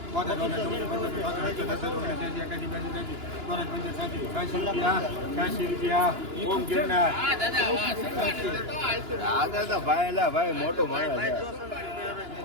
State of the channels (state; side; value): late; left; 2.9 ms